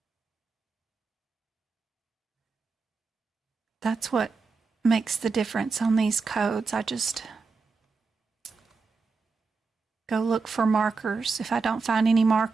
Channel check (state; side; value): quieter; left; 4.5 dB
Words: That's what makes the difference on these codes. I just go look for markers. If I don't find any